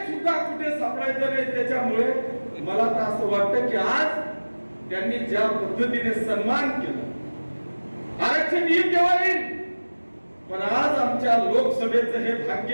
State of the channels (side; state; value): both; inverted; correlation -1.00